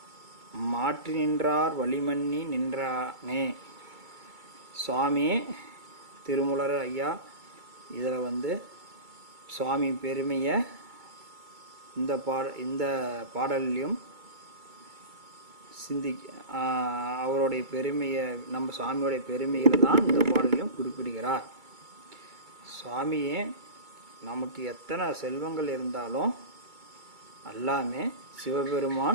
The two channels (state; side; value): late; left; 2.3 ms